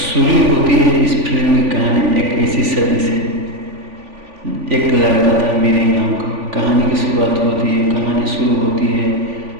होती है इस फिल्म की कहानी एक ऐसी सदी से। एक लड़का था मिराई नाम का। कहानी की शुरुआत होती है, कहानी शुरू होती है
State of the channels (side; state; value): left; late; 3.5 ms